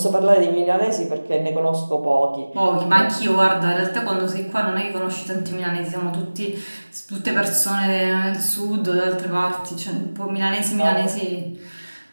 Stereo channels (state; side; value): inverted; both; correlation -1.00